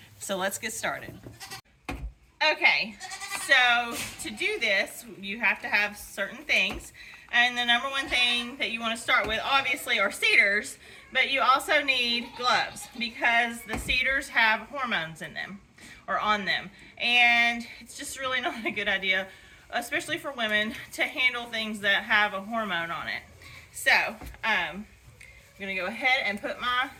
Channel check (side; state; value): both; identical; correlation 1.00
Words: So let's get started. Okay, so to do this, you have to have certain things, and the number one thing that you want to start with obviously are cedars, but you also need gloves because the cedars have hormones in them or on them, and it's just really not a good idea, especially for women, to handle things that have a hormone on it. So I'm gonna go ahead and put my